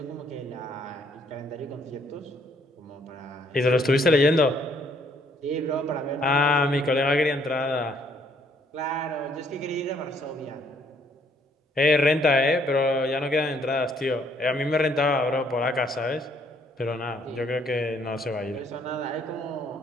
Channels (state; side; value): normal; both; correlation 0.66